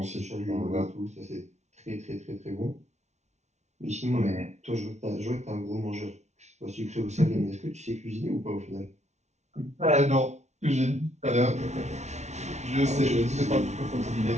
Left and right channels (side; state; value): left; late; 0.32 ms